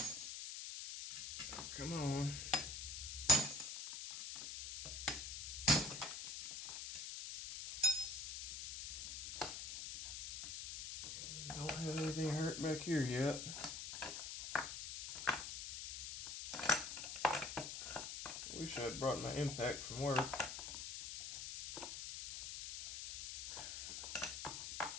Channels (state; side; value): noise; left; hiss, 6 dB below the sound